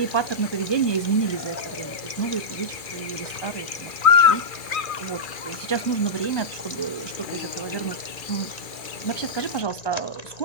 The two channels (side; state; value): right; late; 2.4 ms